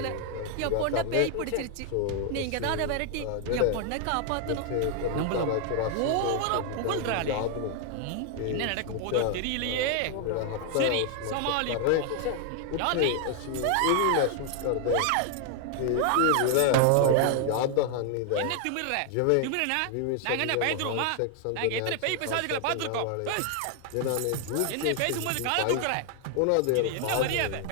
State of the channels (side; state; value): both; different; correlation 0.00